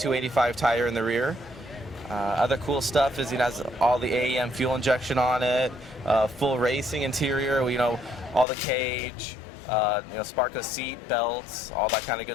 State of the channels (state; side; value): drops out; right; at 8.5 s